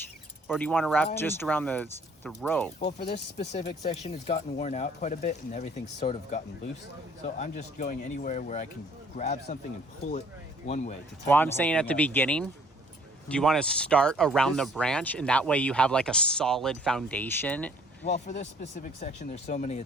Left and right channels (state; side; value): normal; both; correlation 0.58